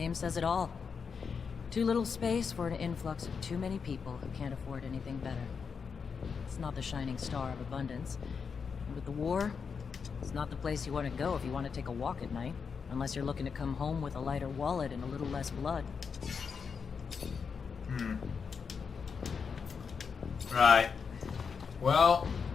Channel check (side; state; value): right; quieter; 5.9 dB